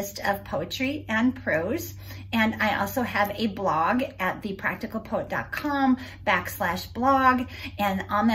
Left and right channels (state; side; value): identical; both; correlation 1.00